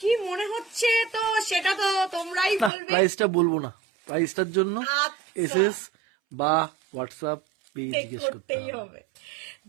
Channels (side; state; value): left; drops out; at 2.7 s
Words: কি মনে হচ্ছে তো সেটা তো তোমরাই বলবে। প্রাইসটা বলবো না, প্রাইসটার জন্য আচ্ছা। এসএস বা হোয়াটসঅ্যাপ পেজ জিজ্ঞেস করতে করতেই হবে।